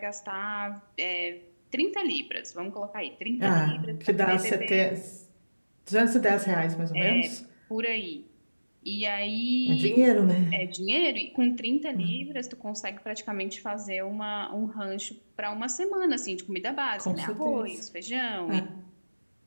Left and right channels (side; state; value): both; inverted; correlation -1.00